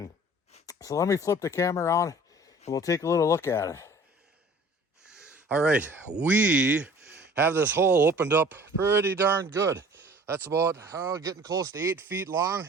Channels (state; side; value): normal; both; correlation 0.48